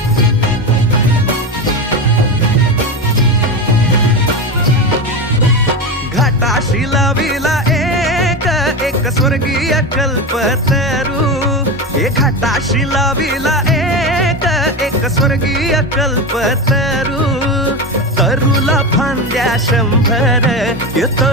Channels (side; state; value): both; normal; correlation 0.19